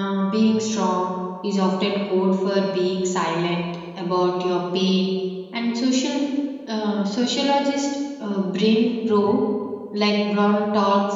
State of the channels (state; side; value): identical; both; correlation 1.00